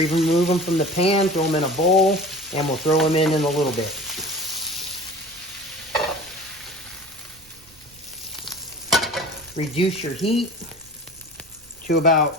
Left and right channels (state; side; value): noise; right; rumble, 28 dB below the sound